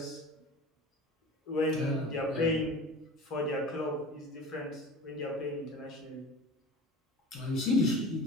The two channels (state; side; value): normal; both; correlation 0.37